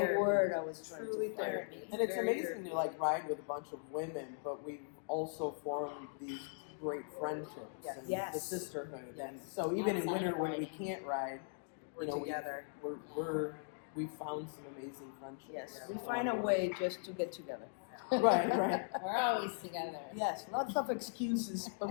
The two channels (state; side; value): silent; right; digital silence